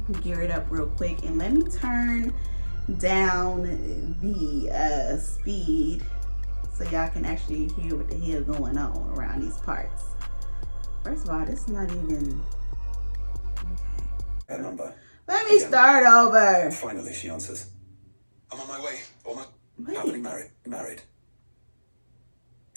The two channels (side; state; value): both; inverted; correlation -1.00